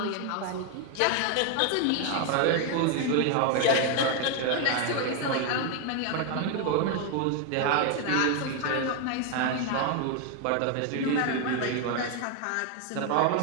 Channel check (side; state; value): both; different; correlation 0.01